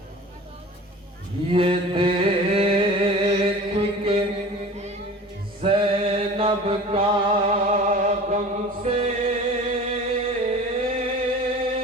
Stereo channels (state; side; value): normal; both; correlation 0.40